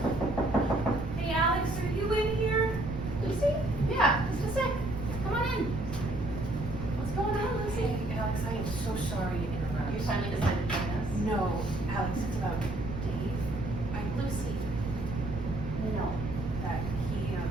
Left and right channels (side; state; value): right; noise; rumble, 7 dB below the sound